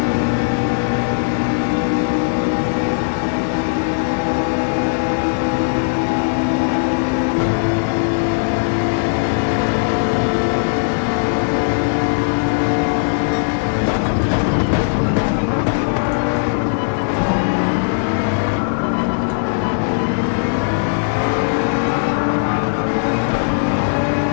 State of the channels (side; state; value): right; silent; digital silence